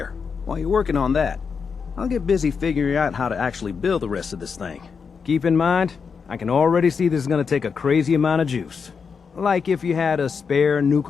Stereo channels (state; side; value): quieter; right; 5.8 dB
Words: While you're working on that, I'll get busy figuring out how to actually build the rest of this thing. Keep in mind, I can already see this is gonna take a crazy amount of juice. Like if you had a spare